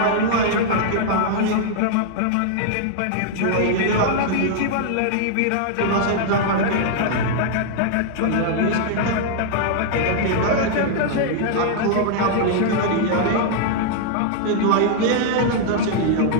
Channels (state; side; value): different; both; correlation -0.01